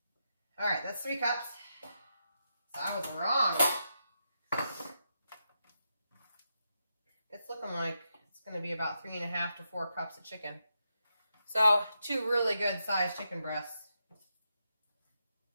all right, that's 3 cups. So I was wrong. It's looking like it's going to be about 3.5 to 4 cups of chicken. So 2 really good sized chicken breasts.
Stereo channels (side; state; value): both; inverted; correlation -0.84